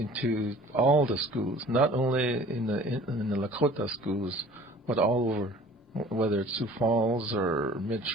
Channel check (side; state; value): both; normal; correlation 0.48